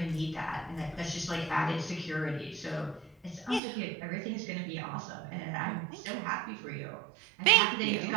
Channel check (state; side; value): drops out; left; at 3.6 s